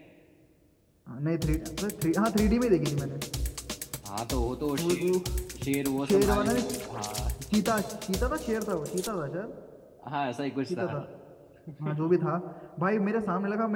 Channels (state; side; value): identical; both; correlation 1.00